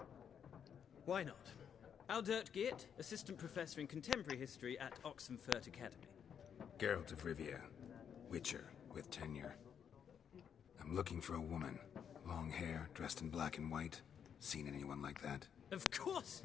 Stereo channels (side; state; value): right; quieter; 8.0 dB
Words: Why not? Aldert Geert, Assistant Professor in Contemporary History at Oxenfurt Academy. Geralt of Rivia. Witcher, with tenure. I'm looking for a woman. Long hair, dressed in black and white. Seen anyone like that? Of course